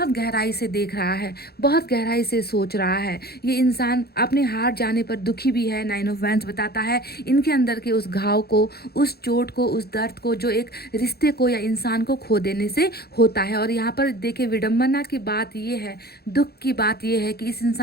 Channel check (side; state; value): right; late; 0.46 ms